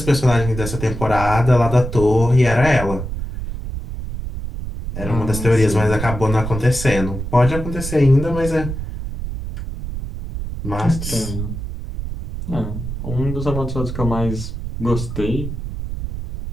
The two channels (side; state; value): right; noise; rumble, 6 dB below the sound